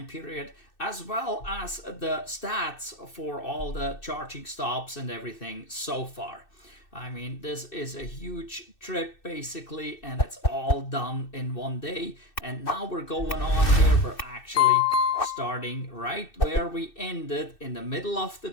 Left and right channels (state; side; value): late; right; 2.6 ms